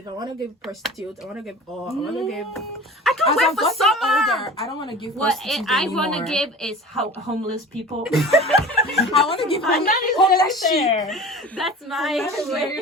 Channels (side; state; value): both; normal; correlation 0.38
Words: I want to give prostitute. I want to give all. I want to give. I As can't wait I've for gotten summer. older, I don't want to give What prostitutes I want to anymore. give is homeless people. I want to give And that is very homeless sheep. fair. That's my That is